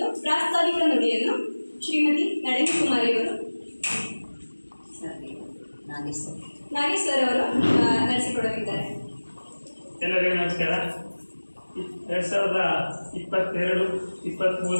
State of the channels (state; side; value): inverted; both; correlation -1.00